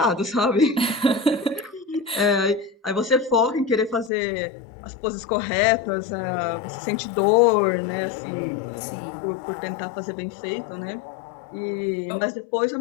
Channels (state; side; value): drops out; right; at 4.1 s